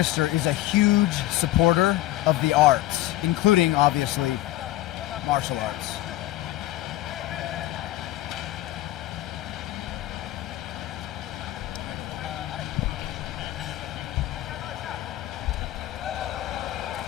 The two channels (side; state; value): right; quieter; 15.6 dB